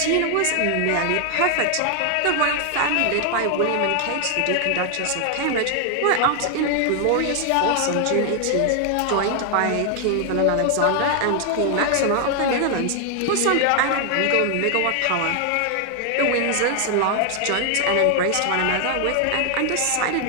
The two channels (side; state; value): both; different; correlation 0.00